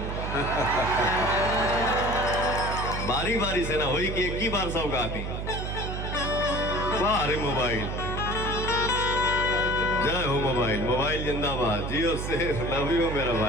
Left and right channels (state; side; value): noise; right; hum, 4 dB below the sound